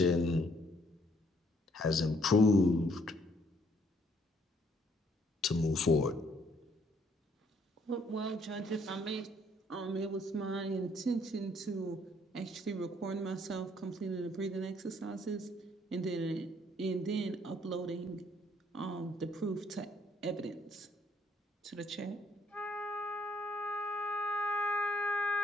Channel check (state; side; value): normal; both; correlation 0.66